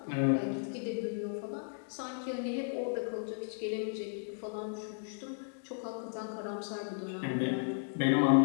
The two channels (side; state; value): right; silent; digital silence